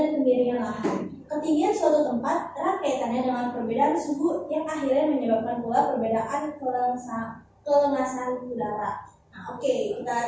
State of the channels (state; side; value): identical; both; correlation 1.00